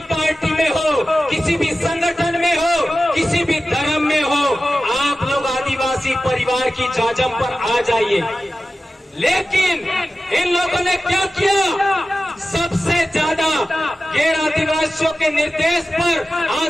पार्टी में हो, किसी भी संगठन में हो, किसी भी धर्म में हो, आप लोग आदिवासी परिवार की जाजम पर आ जाइए। लेकिन इन लोगों ने क्या किया? सबसे ज्यादा गैर आदिवासियों के निर्देश पर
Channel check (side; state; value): both; normal; correlation 0.95